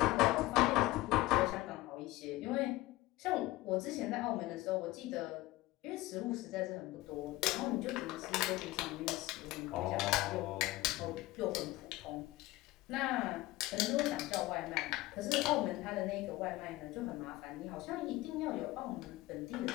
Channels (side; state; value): right; quieter; 18.6 dB